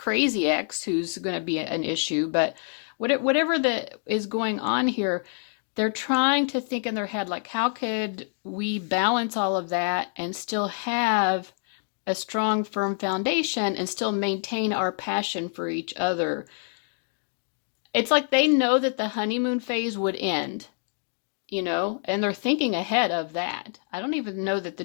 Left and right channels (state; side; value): silent; right; 61 dB below the other